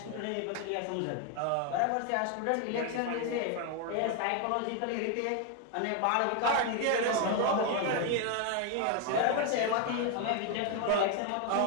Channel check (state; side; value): different; both; correlation 0.01